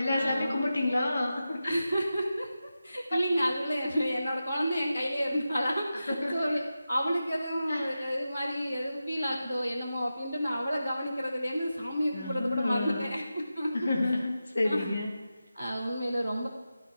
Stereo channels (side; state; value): both; inverted; correlation -0.92